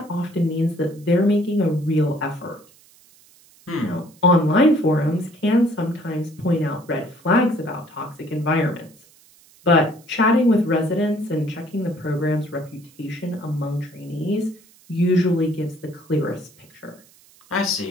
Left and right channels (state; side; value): noise; right; hiss, 28 dB below the sound